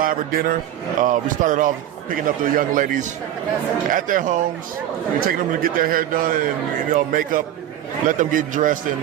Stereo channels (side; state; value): left; quieter; 11.5 dB